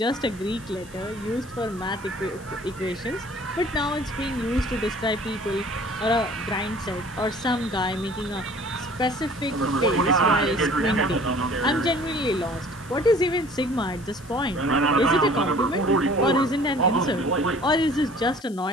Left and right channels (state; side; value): noise; left; hiss, 22 dB below the sound